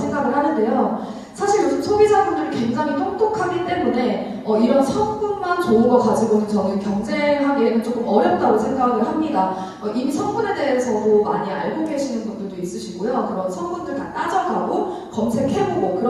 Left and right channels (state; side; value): identical; both; correlation 1.00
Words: 하는데요. 사실 요즘 소비자분들이 굉장히 똑똑하기 때문에 이런 성분만 좋은 거 가지고는 저는 경쟁하기에는 조금 어렵다고 생각을 합니다. 이미 성분에 대해서도 많이 알고 계시는 분들도 있으시고요. 그런 성분들 다 따져가고 검색해보고